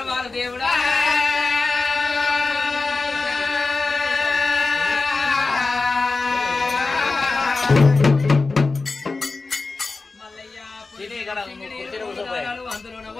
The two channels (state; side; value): quieter; right; 3.8 dB